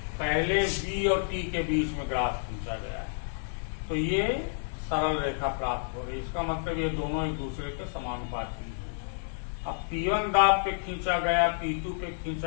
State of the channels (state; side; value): silent; right; digital silence